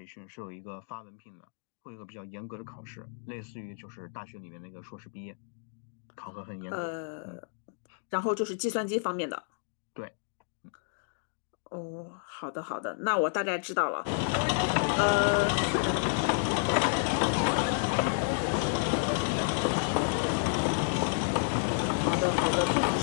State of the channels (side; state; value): right; silent; digital silence